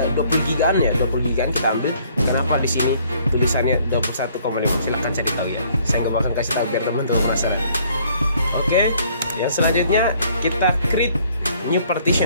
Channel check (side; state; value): both; inverted; correlation -0.61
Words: gigaan ya, 20 gigaan kita ambil. Kenapa di sini tulisannya 21,5? Silahkan cari tahu ya. Saya nggak bakal kasih tahu biar teman-teman penasaran. Oke, yang selanjutnya kita create new